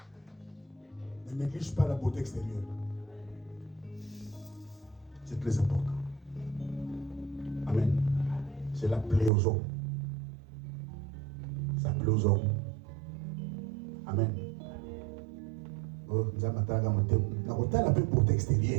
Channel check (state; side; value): drops out; left; at 9.3 s